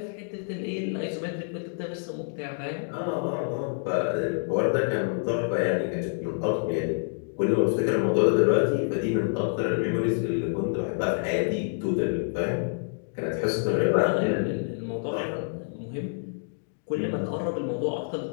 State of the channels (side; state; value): right; silent; digital silence